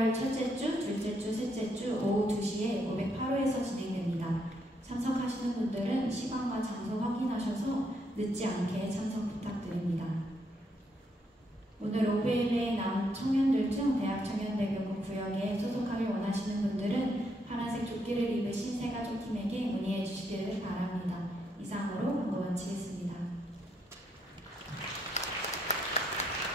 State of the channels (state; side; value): normal; both; correlation 0.75